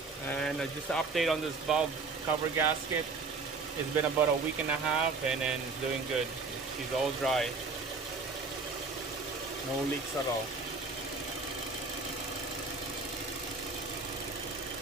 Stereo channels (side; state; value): left; quieter; 4.2 dB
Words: And just an update on this valve cover gasket. It's been about a week and a half, and then doing good. She's all dry. No leaks at all.